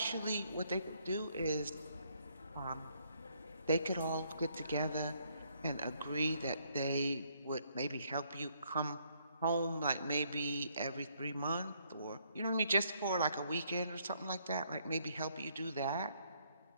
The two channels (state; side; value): inverted; both; correlation -0.70